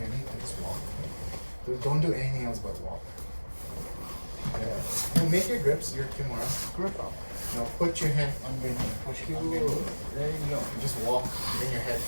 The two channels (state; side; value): inverted; both; correlation -1.00